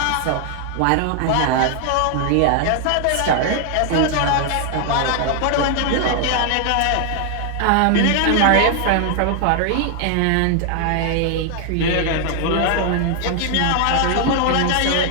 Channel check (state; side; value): different; both; correlation 0.00